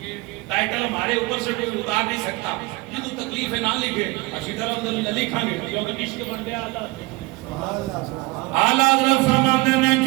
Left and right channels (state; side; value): quieter; left; 23.0 dB